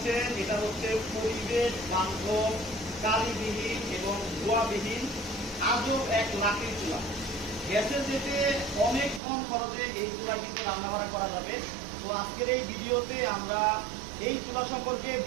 এটা হচ্ছে পরিবেশ বান্ধব, কালিবিহীন এবং ধোঁয়াবিহীন আজব এক লাঠির চুলা। গ্যাসের যেতে অনেক কম খরচে এই চুলা কিন্তু রান্নাবান্না করা যাবে। তো আজকের এই ভিডিওতে আমরা এই চুলা সম্পর্কে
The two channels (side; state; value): left; drops out; at 9.2 s